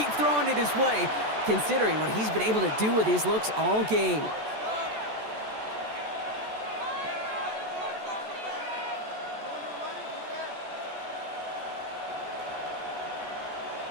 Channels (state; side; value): late; left; 14 ms